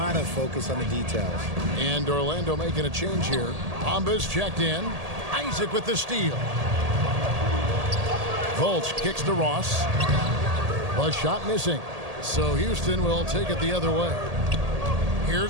focus on the details. And Orlando making a change here. Bamba's checked in. Isaac with the steal. Fultz kicks to Ross. A shot missing. So Houston will take it the other way.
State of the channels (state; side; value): late; left; 1.8 ms